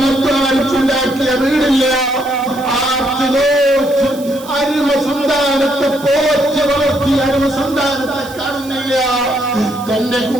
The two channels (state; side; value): noise; right; hiss, 18 dB below the sound